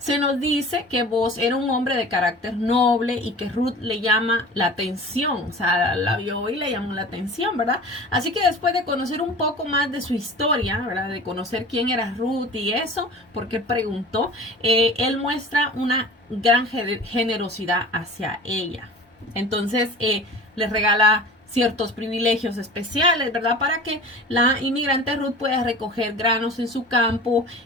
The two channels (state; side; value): normal; both; correlation 0.40